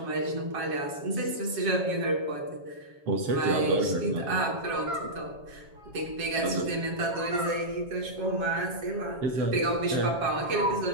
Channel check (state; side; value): late; left; 7.3 ms